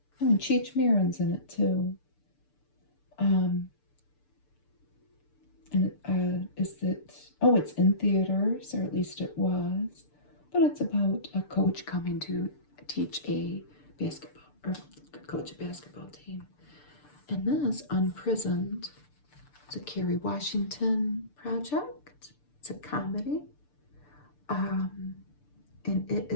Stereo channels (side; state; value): right; late; 6.8 ms